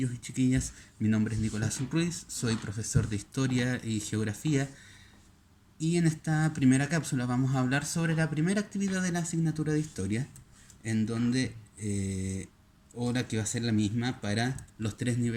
y chiquillas, mi nombre es Nicolás Ruiz, soy profesor de Historia y Geografía y en esta primera cápsula vamos a hablar sobre la primera actividad de la asignatura de Historia, en donde, ahora que va a ser la misma para los tres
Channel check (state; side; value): identical; both; correlation 1.00